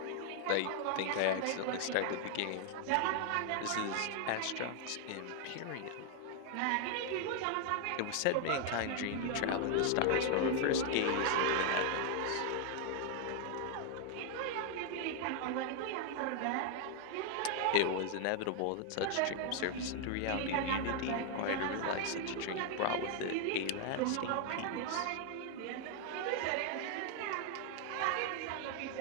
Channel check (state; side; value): different; both; correlation 0.00